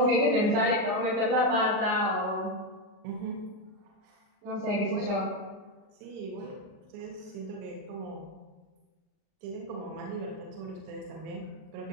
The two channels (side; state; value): left; late; 39 ms